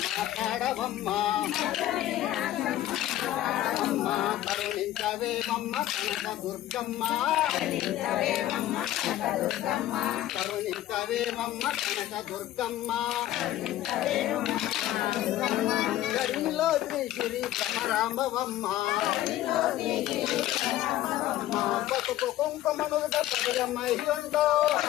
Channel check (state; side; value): quieter; right; 13.8 dB